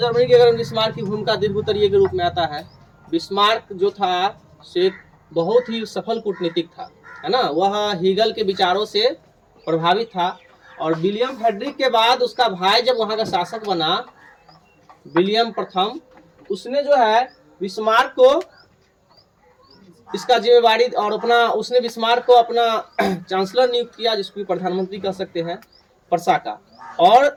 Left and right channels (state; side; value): identical; both; correlation 1.00